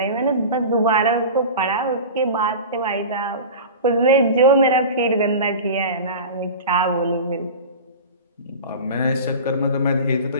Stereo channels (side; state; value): both; inverted; correlation -0.33